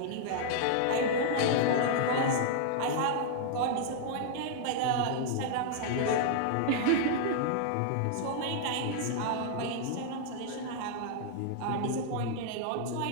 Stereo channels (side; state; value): both; different; correlation -0.01